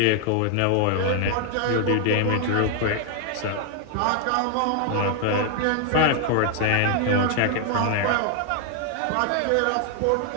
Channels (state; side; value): different; both; correlation 0.00